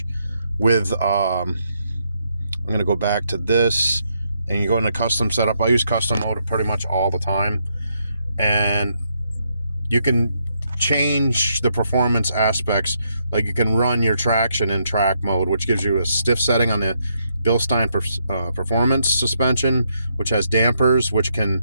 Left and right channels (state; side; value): inverted; both; correlation -0.76